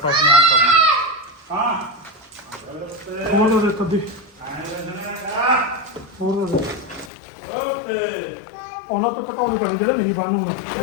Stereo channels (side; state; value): right; drops out; at 7.1 s